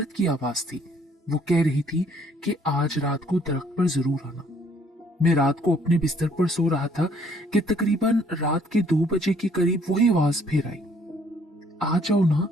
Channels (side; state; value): both; normal; correlation 0.62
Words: की आवाज थी, वो कह रही थी कि आज रात को दरख्त पर जरूर आना। मैं रात को अपने बिस्तर पर सो रहा था कि तकरीबन रात के 2 बजे के करीब वही आवाज फिर आई, आ जाओ ना,